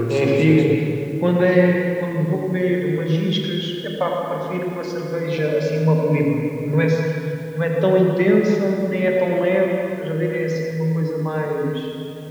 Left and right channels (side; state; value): both; identical; correlation 1.00